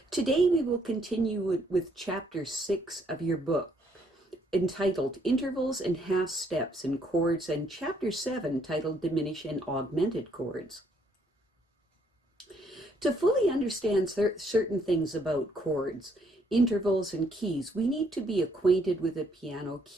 Today we will continue with Chapter 6 of your book, entitled Intervals and Half Steps in Chords, and Chapter 7, titled Diminished and Augmented Chords. To fully understand certain things about chords, intervals, and keys, we need to be acquainted with a piano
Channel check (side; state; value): both; normal; correlation 0.69